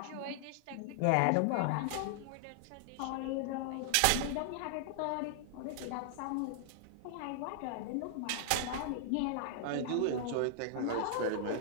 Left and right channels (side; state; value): both; different; correlation -0.01